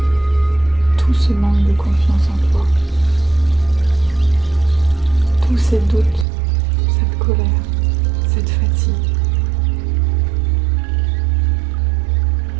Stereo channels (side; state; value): left; drops out; at 6.2 s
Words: tout ce manque de confiance en toi, tous ces doutes, cette colère, cette fatigue.